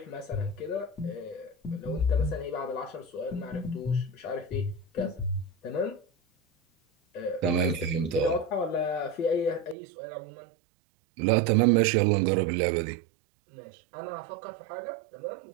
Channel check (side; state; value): left; drops out; at 9.8 s